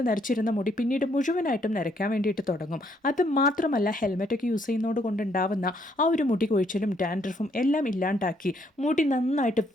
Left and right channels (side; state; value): both; normal; correlation 0.70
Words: നരച്ചിരുന്ന മുടി പിന്നീട് മുഴുവനായിട്ടും നരയ്ക്കാൻ വേണ്ടിയിട്ട് തുടങ്ങും. അത് മാത്രമല്ല ഹെൽമെറ്റൊക്കെ യൂസ് ചെയ്യുന്നതോട് കൊണ്ടുണ്ടാവുന്ന ആ ഒരു മുടി കൊഴിച്ചിലും ഡാൻഡ്രഫും എല്ലാം ഇല്ലാണ്ടാക്കി മുടി നന്നായിട്ട്